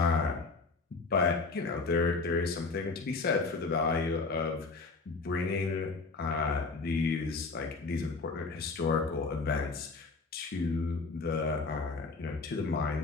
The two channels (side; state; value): right; quieter; 4.0 dB